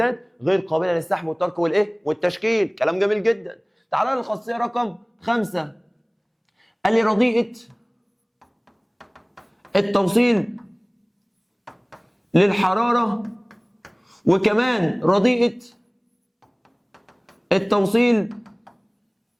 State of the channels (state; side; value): identical; both; correlation 1.00